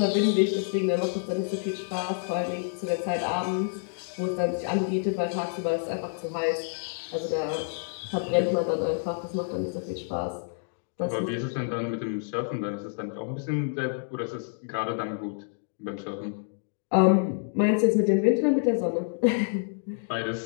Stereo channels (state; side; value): silent; right; digital silence